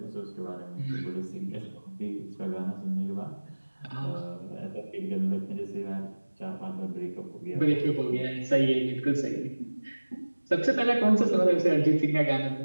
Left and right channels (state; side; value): inverted; both; correlation -1.00